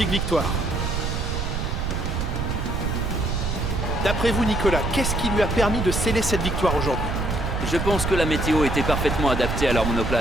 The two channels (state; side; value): noise; right; rumble, 2 dB below the sound